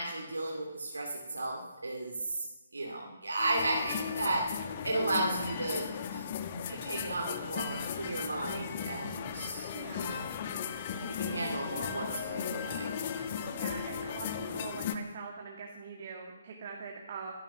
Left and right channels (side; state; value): both; inverted; correlation -0.69